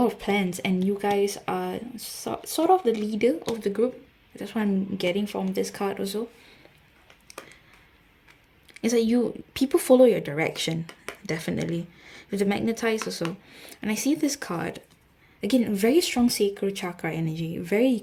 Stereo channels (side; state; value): both; identical; correlation 1.00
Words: of plans, and you guys are sort of the leader of the group. That's what I'm getting from this card also. It's like people follow your direction, definitely. With the Magnetize also. And I see this card, again, very strong sacral chakra energy, very